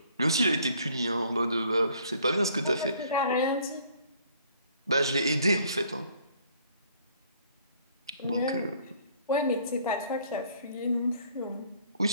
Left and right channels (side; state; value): both; inverted; correlation -0.60